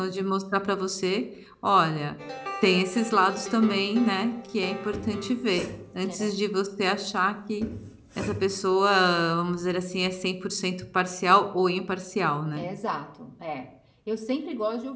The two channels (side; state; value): both; identical; correlation 1.00